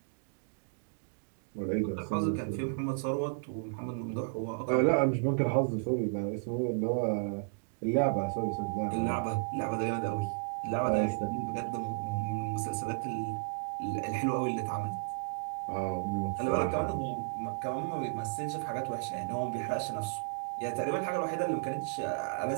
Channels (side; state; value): left; silent; digital silence